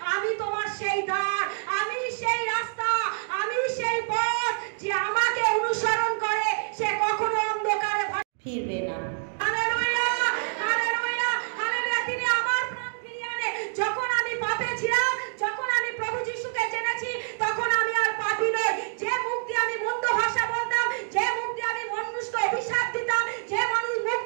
আমি তোমার সেই দ্বার, আমি সেই রাস্তা, আমি সেই পথ। যে আমাকে অনুসরণ করে সে কখনো অন্ধকারে ফিরবে না। Hallelujah, hallelujah, hallelujah. তিনি আমার প্রাণ ফিরিয়ে আনে। যখন আমি পাপে ছিলাম, যখন আমি প্রভু যিশুকে জেনেছি, তখন আমি আর পাপী নই। যে মুখ দিয়ে আমি মন্দ ভাষা বলতাম, যে মুখ দিয়ে আমি মানুষকে অভিশাপ দিতাম, যে মুখ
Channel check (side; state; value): left; silent; 60 dB below the other